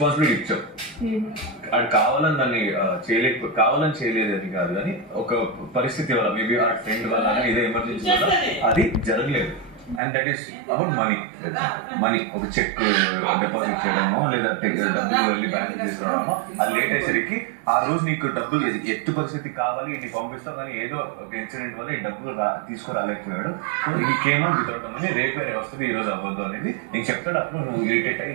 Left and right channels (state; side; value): drops out; left; at 10.0 s